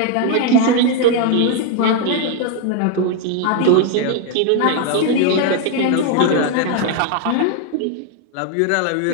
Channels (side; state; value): both; different; correlation 0.01